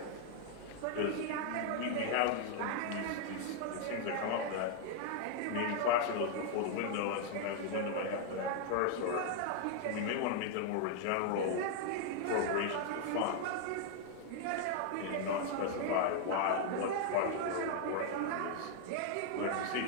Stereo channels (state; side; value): different; both; correlation 0.00